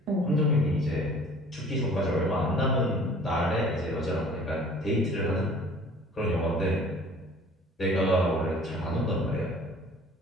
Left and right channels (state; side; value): normal; both; correlation 0.50